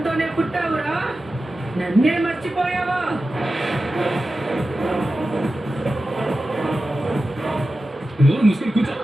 పుట్టావురా, నన్నే మర్చిపోయావా? నోరు ముసుకుని కూర్చో.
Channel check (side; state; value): both; normal; correlation 0.93